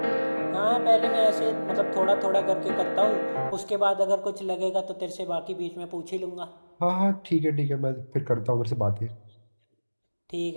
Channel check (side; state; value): both; inverted; correlation -1.00